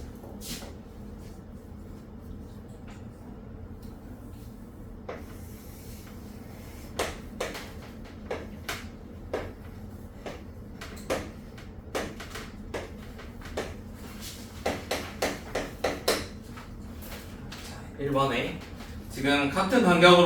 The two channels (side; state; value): both; identical; correlation 1.00